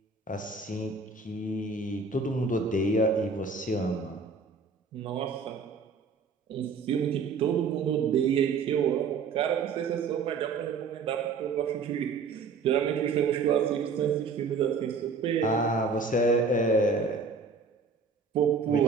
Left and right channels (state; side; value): quieter; left; 4.8 dB